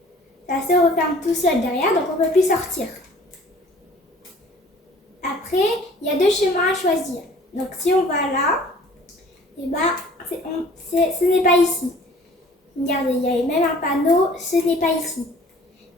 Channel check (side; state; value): both; normal; correlation 0.51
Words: Ça se referme tout seul derrière, donc on ne peut plus sortir. Après, il y a deux chemins à choisir. Donc si on va là, et ce n'est pas ici. Regardez, il y a même un panneau, ce n'est pas ici.